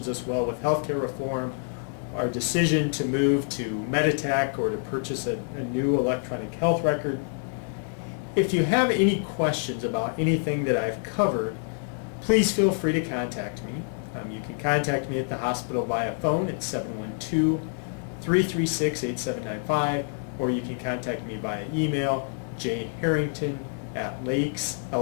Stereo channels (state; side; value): silent; right; 56 dB below the other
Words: us well with healthcare reform, our decision to move to Meditech or to purchase a new electronic health record. If you have any questions about anything that I've covered, please feel free to contact me. You can contact me at the hospital via phone at 712-336-8795, or you can contact me via email, jharrington@lakes,